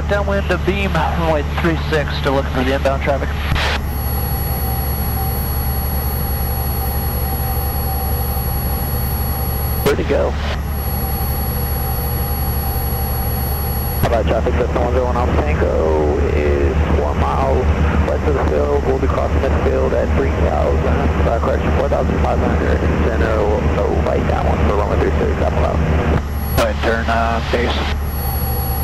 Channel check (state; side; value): identical; both; correlation 1.00